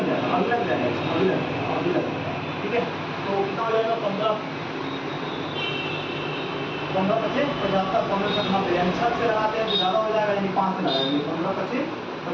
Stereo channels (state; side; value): identical; both; correlation 1.00